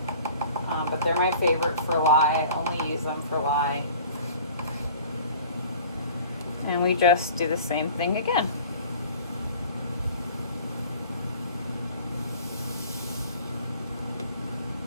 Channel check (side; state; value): both; inverted; correlation -0.46